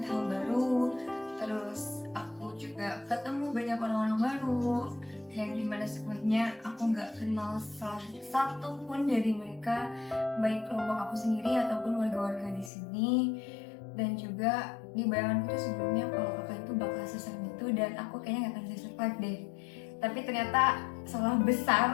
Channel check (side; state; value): right; drops out; at 12.7 s